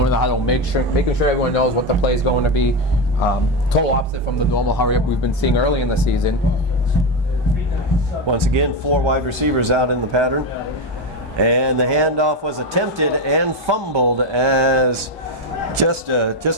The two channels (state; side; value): normal; both; correlation 0.13